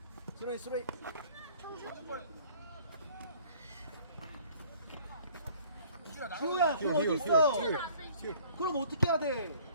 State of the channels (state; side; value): inverted; both; correlation -0.54